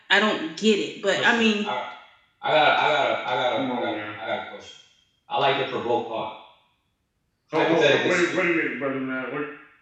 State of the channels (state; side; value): identical; both; correlation 1.00